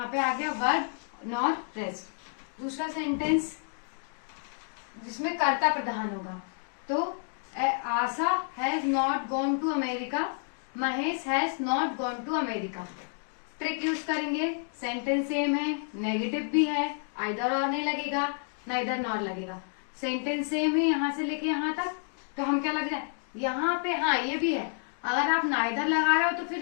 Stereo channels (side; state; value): right; silent; 58 dB below the other